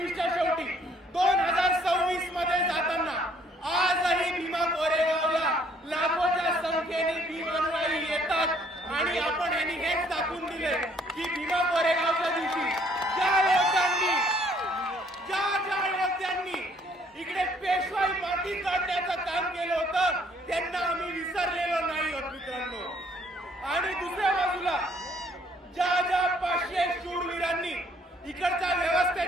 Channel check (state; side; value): normal; both; correlation 0.63